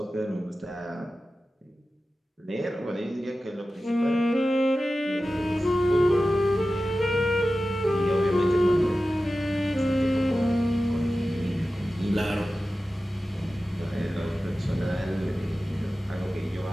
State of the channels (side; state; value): both; normal; correlation 0.94